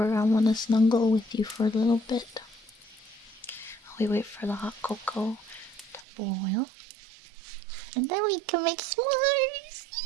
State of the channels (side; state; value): left; drops out; at 6.1 s